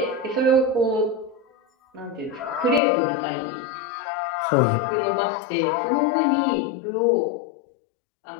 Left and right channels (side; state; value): right; drops out; at 2.8 s